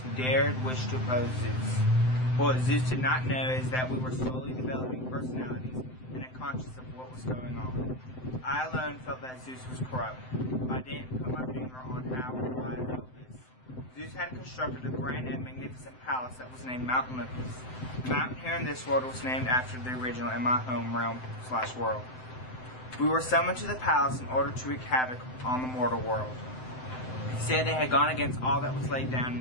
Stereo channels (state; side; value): late; right; 7.8 ms